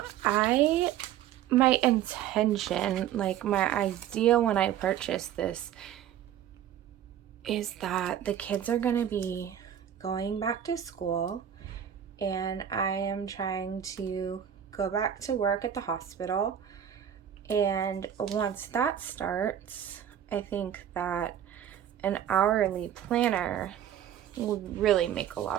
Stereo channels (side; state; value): left; quieter; 10.1 dB